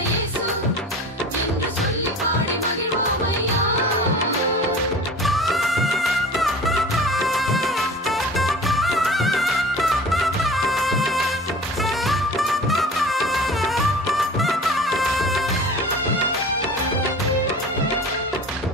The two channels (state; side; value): normal; both; correlation 0.40